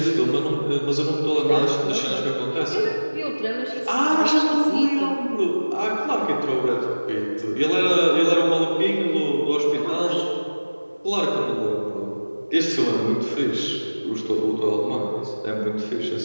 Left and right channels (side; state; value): both; inverted; correlation -1.00